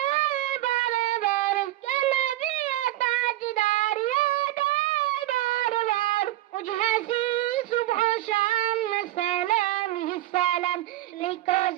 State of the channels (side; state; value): left; quieter; 15.6 dB